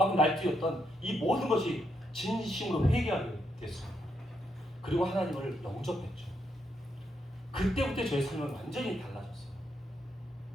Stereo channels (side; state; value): both; normal; correlation 0.79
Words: 날뛰었던 이 모든 것이 진심으로 회개하게 됐습니다. 그리고 하나님을 영접했죠. 그때부터 저의 삶은 완전히 달라졌어요.